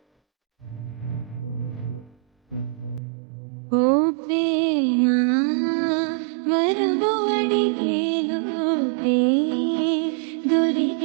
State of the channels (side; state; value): left; drops out; at 3.0 s